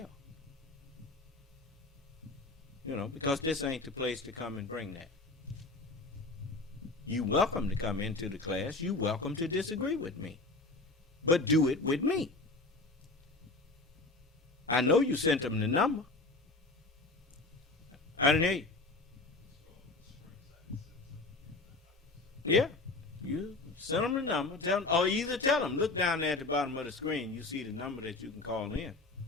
You know, because this ain't the place to come and bring that. You welcome to come into the class. You welcome to disagree with me. But do it with me. I know you sent them the number. I didn't hear you. Yeah, you send them the number. Tell them, or either tell them, look down there at the bottom of the screen. You see the number that you can call in.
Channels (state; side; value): quieter; right; 3.3 dB